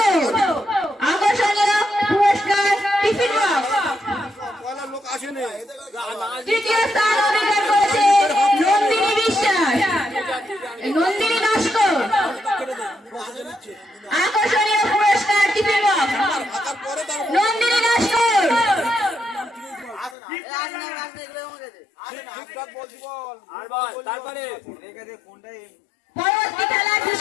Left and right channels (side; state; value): right; drops out; at 20.2 s